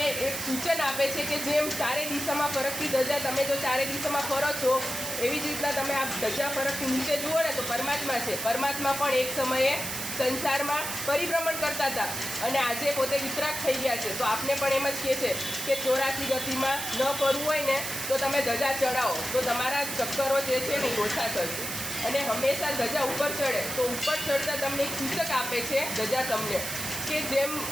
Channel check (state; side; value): noise; right; hiss, 4 dB below the sound